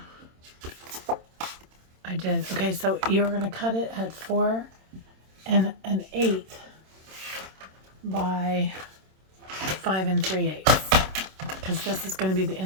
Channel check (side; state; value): left; late; 26 ms